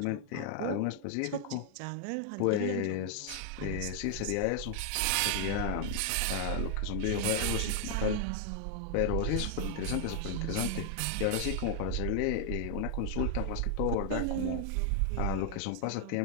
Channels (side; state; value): both; different; correlation 0.00